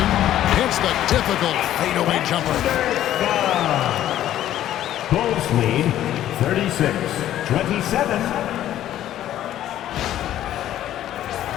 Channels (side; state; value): right; quieter; 12.4 dB